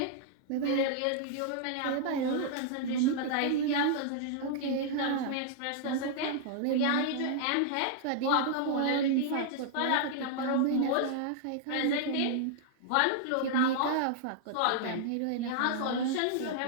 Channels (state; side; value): different; both; correlation -0.01